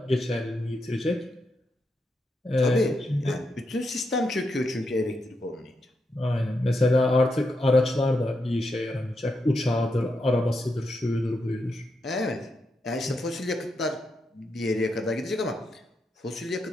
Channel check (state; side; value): normal; both; correlation 0.84